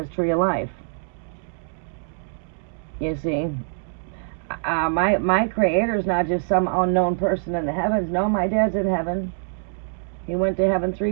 tree of life. You see? My Creator's not just some unknown person in the heavens. No, my dad's in heaven. He went to heaven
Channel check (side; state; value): left; silent; digital silence